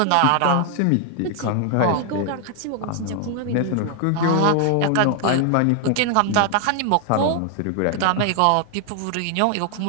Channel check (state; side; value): different; both; correlation 0.00